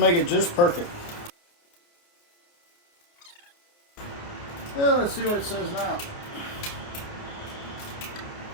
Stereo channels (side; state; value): right; late; 29 ms